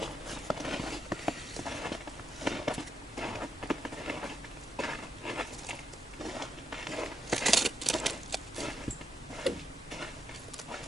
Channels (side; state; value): both; normal; correlation 0.82